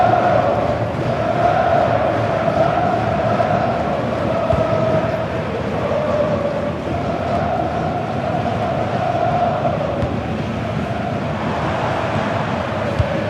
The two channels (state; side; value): identical; both; correlation 1.00